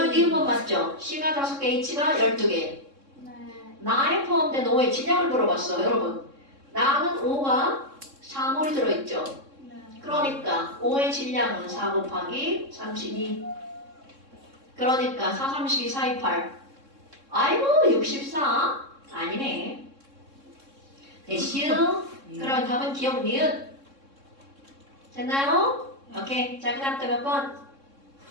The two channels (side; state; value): left; late; 3.6 ms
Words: 니은번 맞죠? C가 5개, H가 12개. 네. 나에 포함된 5의 질량을 물어봤어, 여러분. 나는 5가 4몰이 들어있죠. 네. 그러니까 5의 질량은 4 곱하기 32. 그러니까 4, 32, 4, 2, 8. 아이고 64? 아니네. 됐슈? 그럼 답은 기억 니은. 됐나요? 오케이. 자, 그 다음 또 몇 번?